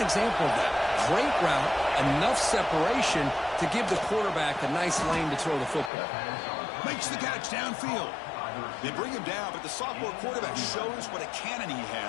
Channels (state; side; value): drops out; right; at 5.9 s